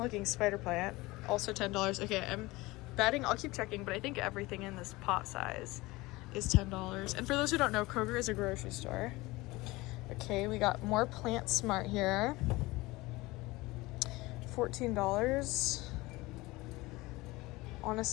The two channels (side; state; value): right; quieter; 21.2 dB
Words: spider plant, also $10. Okay, I'm betting, I'll keep checking, but I think everything in this pot size is $10. And for those who don't know, Kroger is a grocery store. Okay, we got more PlantSmart here. $14.